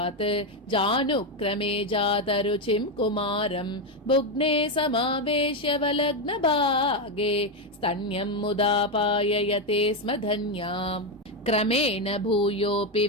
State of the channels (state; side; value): normal; both; correlation 0.08